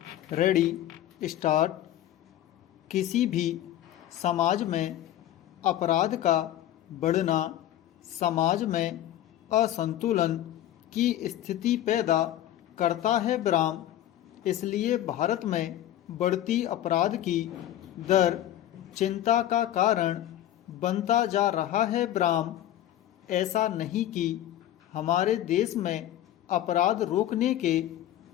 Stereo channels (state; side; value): quieter; right; 12.6 dB